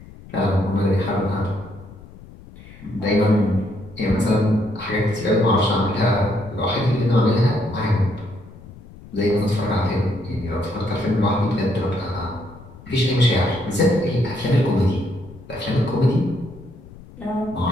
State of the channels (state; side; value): noise; left; rumble, 19 dB below the sound